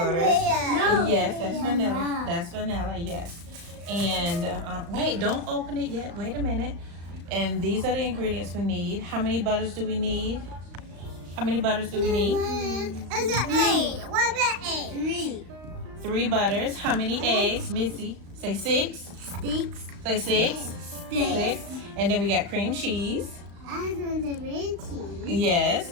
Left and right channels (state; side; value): late; left; 35 ms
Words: No. Yes, that's vanilla. That's vanilla, yes. And wait, don't open it yet. Wait a minute. And these are the ingredients we need. How many butters do we need? How many butters do we need? It's 8. What's the 8? 3. 3 butters. How many eggs? Missy, say 6. 6. Say 6. 6. And then we got cream cheese. I want the red cheese. Yes.